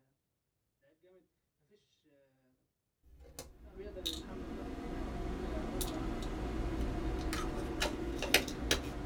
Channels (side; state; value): both; identical; correlation 1.00